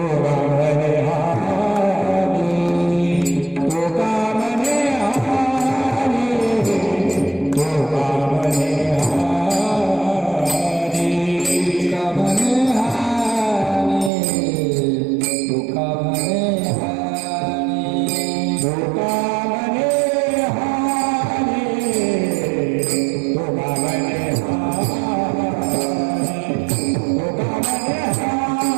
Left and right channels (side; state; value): left; drops out; at 14.1 s